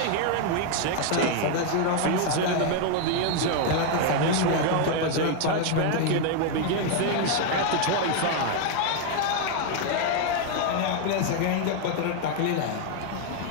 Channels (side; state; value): both; different; correlation 0.00